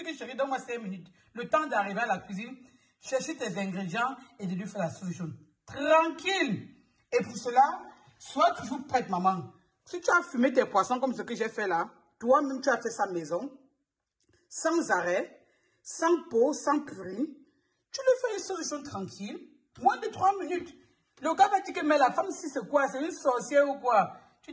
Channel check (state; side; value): identical; both; correlation 1.00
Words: que chérie, donne-moi 5 minutes. Le temps d'arriver à la cuisine, chercher tes ingrédients et de lui faire la sauce jaune. Tranquille. Et pour cela, sois toujours prête, maman. Si tu as fumé tes poissons comme ce que j'ai fait là, toi-même tu as fait ça maison, sans arrêt, sans peau, sans purée, tu lui fais une sauce jaune tranquille, moins de 3 minutes. Le gars va dire que mais la femme, si c'est quoi? C'est une sorcière ou quoi? Tu